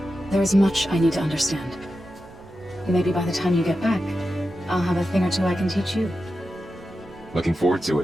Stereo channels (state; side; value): noise; right; rumble, 24 dB below the sound